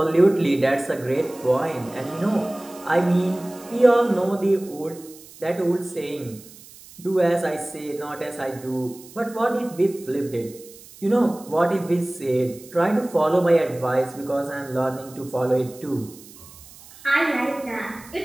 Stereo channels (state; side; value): noise; right; hiss, 20 dB below the sound